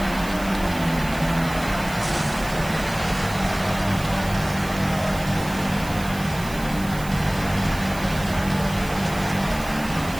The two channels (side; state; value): right; noise; hiss, 15 dB below the sound